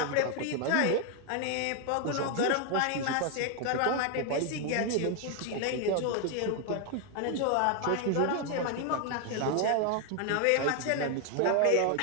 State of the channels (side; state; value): both; different; correlation 0.00